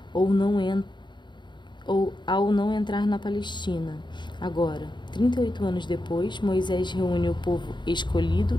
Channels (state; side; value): late; right; 0.22 ms